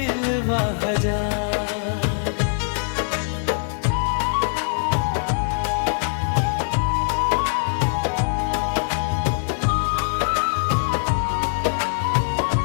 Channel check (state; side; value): silent; right; digital silence